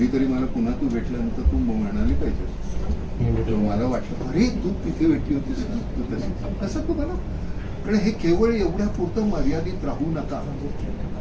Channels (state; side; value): identical; both; correlation 1.00